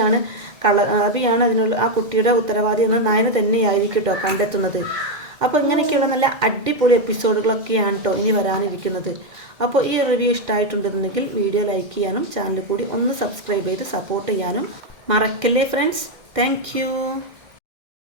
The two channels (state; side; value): late; left; 2.1 ms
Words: അതിനുള്ള ആ കുട്ടിയുടെ ഉത്തരവാദി എന്ന് നയന തന്നെയായിരിക്കും കേട്ടോ കണ്ടെത്തുന്നത്. അപ്പോൾ ഇങ്ങനെയൊക്കെയുള്ള നല്ല അടിപൊളി എപ്പിസോഡുകളൊക്കെയാണ് കേട്ടോ ഇനി വരാനിരിക്കുന്നത്. അപ്പോൾ ഈ റിവ്യൂ ഇഷ്ടമായിട്ടുണ്ടെന്നുണ്ടെങ്കിൽ വീഡിയോ ലൈക്ക് ചെയ്യാനും ചാനൽ കൂടി ഒന്ന് സബ്സ്ക്രൈബ് ചെയ്ത് സപ്പോർട്ട് ചെയ്യാനും മറക്കല്ലേ ഫ്രണ്ട്സ്. താങ്ക്